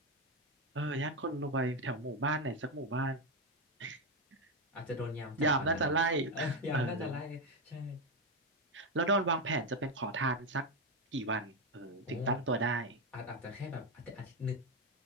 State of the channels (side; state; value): both; normal; correlation 0.08